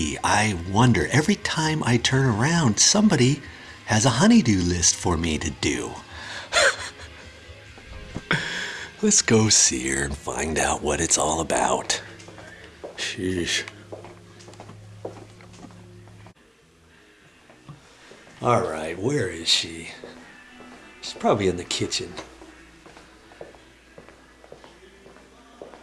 I wonder. Every time I turn around, somebody has a honeydew list for me to do. Let's go see her and find out what it's all about. Sheesh. All right, where is she? She's probably in the kitchen.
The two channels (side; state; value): both; identical; correlation 1.00